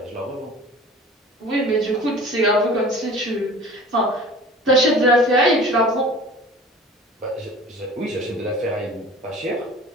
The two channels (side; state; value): both; normal; correlation 0.43